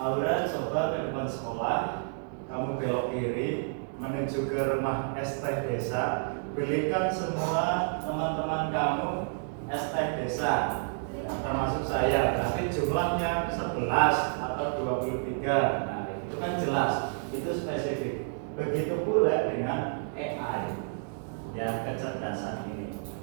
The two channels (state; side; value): silent; left; digital silence